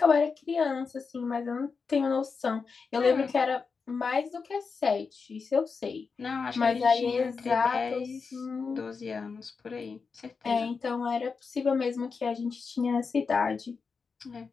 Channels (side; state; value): right; quieter; 5.1 dB